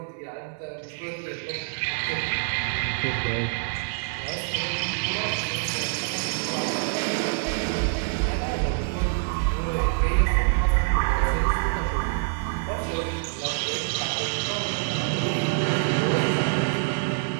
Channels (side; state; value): left; silent; digital silence